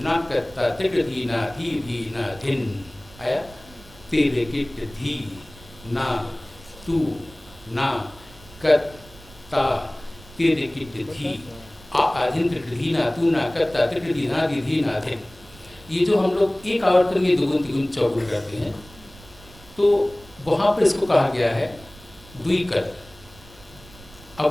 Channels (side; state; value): right; noise; rumble, 22 dB below the sound